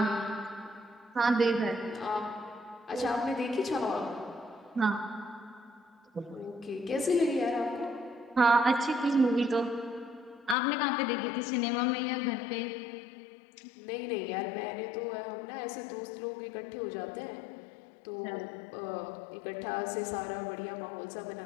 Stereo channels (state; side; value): drops out; right; at 10.6 s